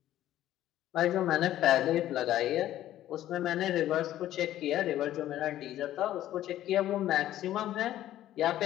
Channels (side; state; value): right; quieter; 13.1 dB